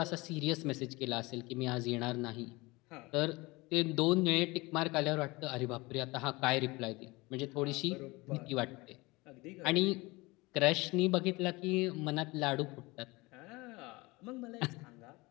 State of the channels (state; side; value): quieter; right; 23.2 dB